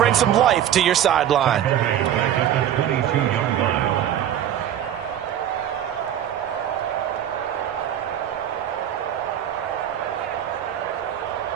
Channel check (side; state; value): left; quieter; 10.5 dB